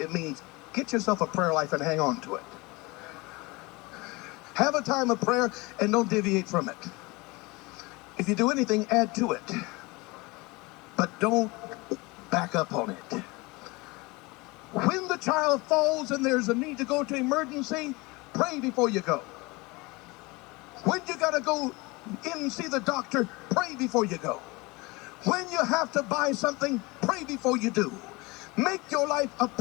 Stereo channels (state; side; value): quieter; right; 24.4 dB